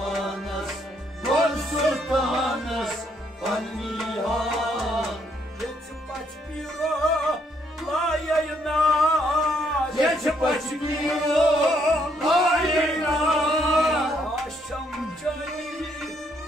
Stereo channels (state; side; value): normal; both; correlation 0.71